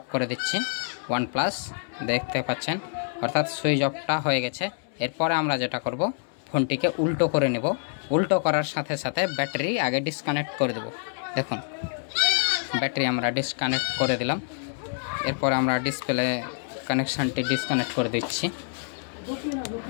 করে দিচ্ছি, OnePlus দেখতে পাচ্ছেন, অর্থাৎ সুইচ অফটা হয়ে গেছে। এরপরে আমরা যেটা করব, ফোনটিকে উল্টো করে নেব। উল্টো করার সাথে সাথে ব্যাটারি আগে ডিসকানেক্ট করে দেব। দেখুন ব্যাটারি আমরা ডিসকানেক্ট করে দিলাম। এরপর আমরা ডিসপ্লে কানেকশানটি ডিসকানেক্ট করে দিচ্ছি।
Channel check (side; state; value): right; silent; 58 dB below the other